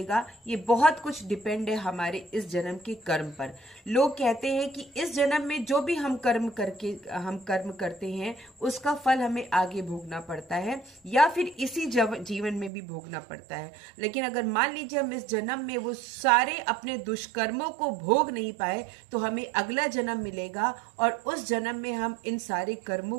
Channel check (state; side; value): drops out; left; at 12.7 s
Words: ये बहुत कुछ डिपेंड है हमारे इस जन्म के कर्म पर। लोग कहते हैं कि इस जन्म में जो भी हम कर्म करते हैं उसका फल हमें आगे भोगना पड़ता है, या फिर इसी जीवन में भी भोगना पड़ता है। लेकिन अगर मान लीजिए हम इस जन्म में वो सारे अपने दुष्कर्मों को भोग नहीं पाए तो हमें अगला जन्म मिलेगा, और उस जन्म में हम इन सारे